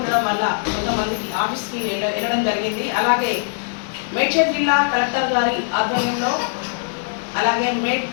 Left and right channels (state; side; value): silent; right; digital silence